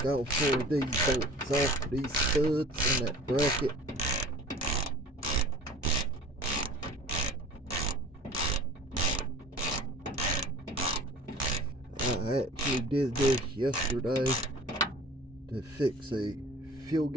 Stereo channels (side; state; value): both; normal; correlation 0.43